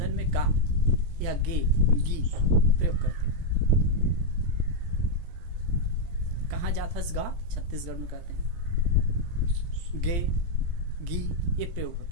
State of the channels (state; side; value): late; left; 17 ms